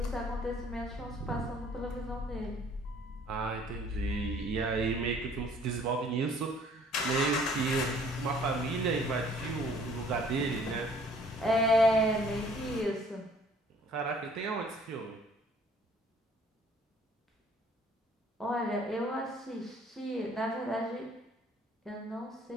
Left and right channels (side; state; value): both; normal; correlation 0.56